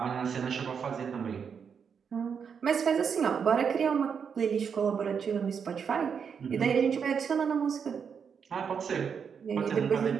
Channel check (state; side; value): quieter; left; 6.7 dB